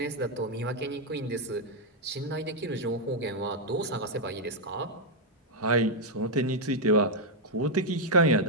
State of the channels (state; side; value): normal; both; correlation -0.02